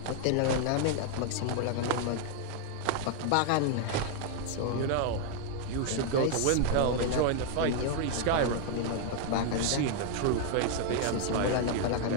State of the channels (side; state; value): both; different; correlation 0.00